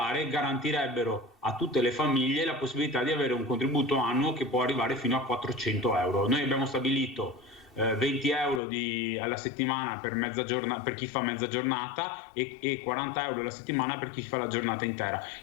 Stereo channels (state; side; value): drops out; right; at 8.6 s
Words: garantirebbero a tutte le famiglie la possibilità di avere un contributo annuo che può arrivare fino a 400 euro. Noi abbiamo stabilito 20 euro alla settimana per chi fa mezza giornata e 40 euro alla settimana per chi fa la giornata intera.